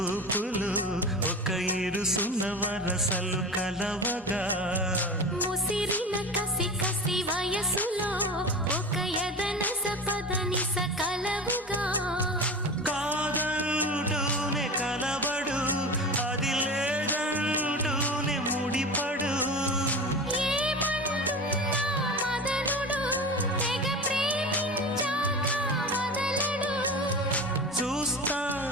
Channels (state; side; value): normal; both; correlation 0.30